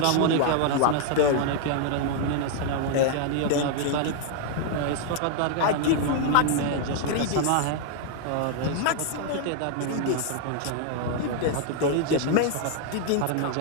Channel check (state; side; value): different; both; correlation 0.00